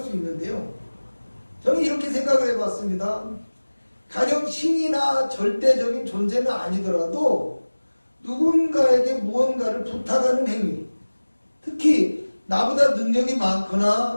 수 있는데요. 저는 이렇게 생각을 해봤습니다. 가령 신이나 절대적인 존재는 아니더라도 누군가에게 무언가를 부탁하는 행위, 특히 나보다 능력이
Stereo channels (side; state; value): both; inverted; correlation -1.00